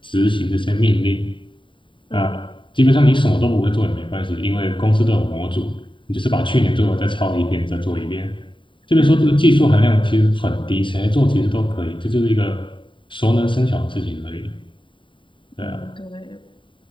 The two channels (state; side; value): late; right; 0.24 ms